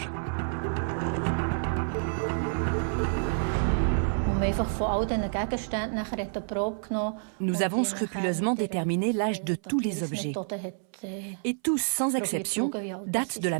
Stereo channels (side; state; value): left; silent; 59 dB below the other